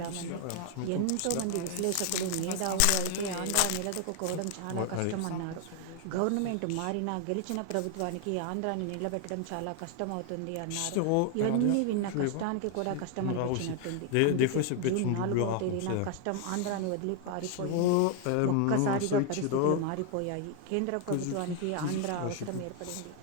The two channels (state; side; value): different; both; correlation 0.00